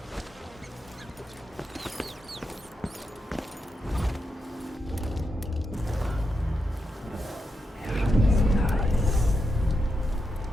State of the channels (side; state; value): both; normal; correlation 0.85